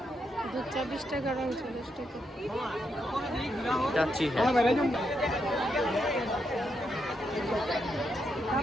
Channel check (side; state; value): both; normal; correlation 0.81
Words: দুধ চা 20 টাকা, রং 40 টাকা। যাচ্ছি। হ্যাঁ,